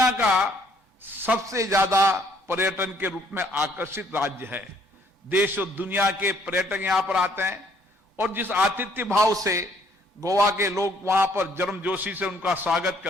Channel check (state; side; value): normal; both; correlation 0.64